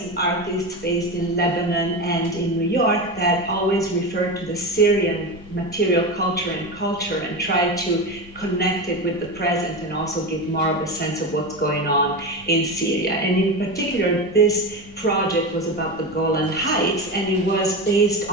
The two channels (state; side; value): normal; both; correlation 0.21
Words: and artists based in Lebanon and in New York that always refer to the Syrian material culture and try to connect it with the present and also give more of a sense of what's going on in Syria. And in particular, this project was about the Golan Heights, and it was based